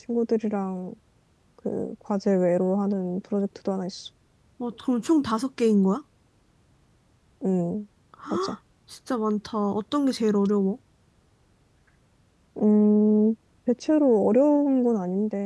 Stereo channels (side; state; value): both; identical; correlation 1.00